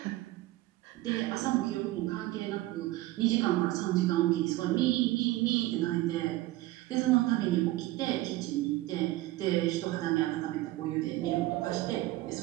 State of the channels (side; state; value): left; quieter; 17.4 dB